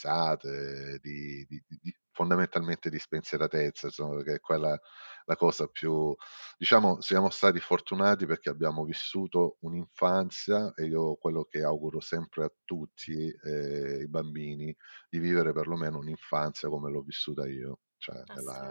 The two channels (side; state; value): both; inverted; correlation -1.00